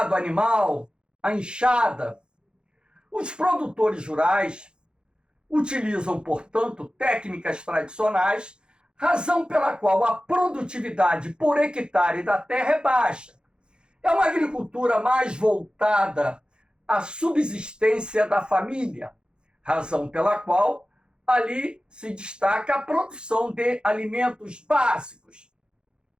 animal, a enxada. Os produtores rurais utilizam, portanto, técnicas tradicionais, razão pela qual a produtividade por hectare da terra é baixa. É uma agricultura mais voltada à subsistência da família, razão pela qual ali se destaca a produção de alimentos básicos,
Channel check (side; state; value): left; late; 0.049 ms